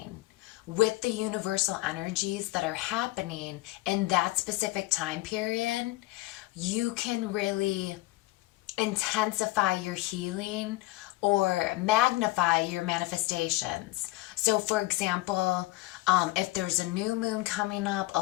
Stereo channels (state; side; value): quieter; right; 19.5 dB